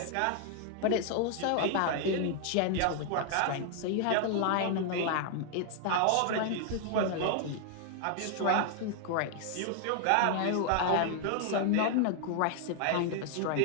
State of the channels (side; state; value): both; different; correlation 0.00